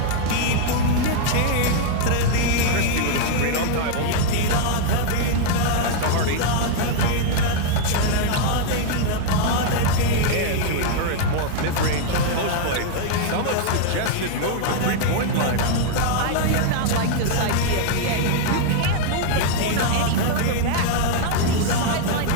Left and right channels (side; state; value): both; different; correlation 0.00